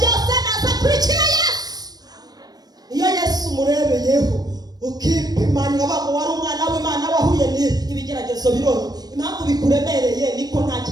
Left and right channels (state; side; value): late; left; 0.19 ms